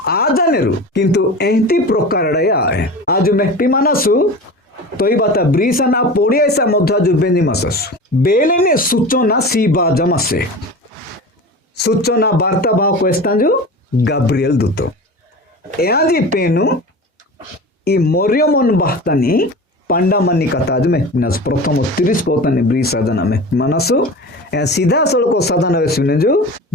आजानेरु किंतु एंती प्रकार आए आज मेक्ति मानसु तोई बाता ब्रीसना पोडियासा मध्य जो बेनी माससु बेलेने सूचना सी बाजमासे सूचना वार्ता भाव क्वेस्तांजु गाब्रिएल दूत एआजी पेनु ई मोरियमन बाहतानी पांडामानी कथा में प्रथम 30 पोतानी ब्री साधना में मानसु ए सीधा सड़को साधना सुने जो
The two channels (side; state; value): both; normal; correlation 0.33